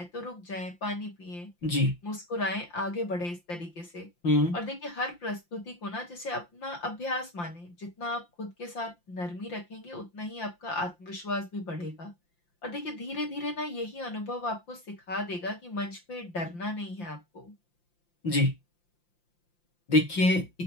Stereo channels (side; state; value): right; late; 5.8 ms